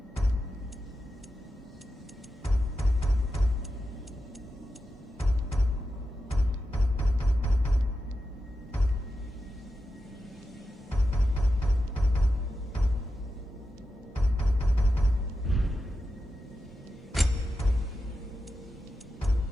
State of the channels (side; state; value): both; normal; correlation 0.90